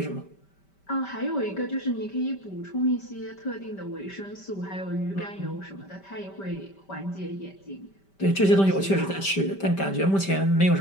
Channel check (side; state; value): right; late; 5.1 ms